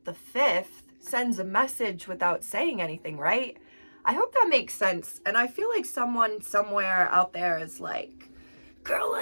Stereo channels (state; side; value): inverted; both; correlation -1.00